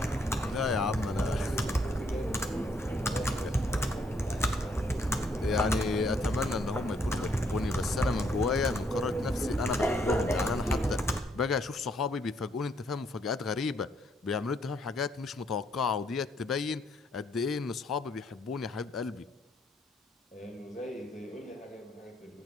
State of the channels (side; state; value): both; normal; correlation 0.71